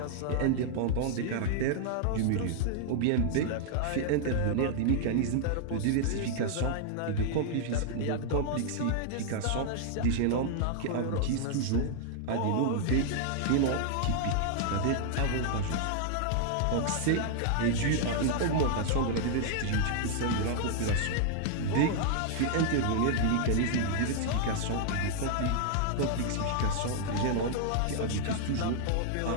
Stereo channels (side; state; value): both; different; correlation -0.01